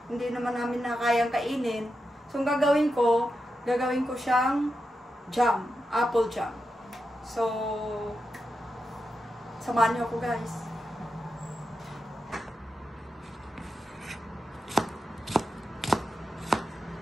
hindi naman namin na kayang kainin. So, ang gagawin ko siyang jam, apple jam. So, samahan niyo ako guys.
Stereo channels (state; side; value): normal; both; correlation 0.88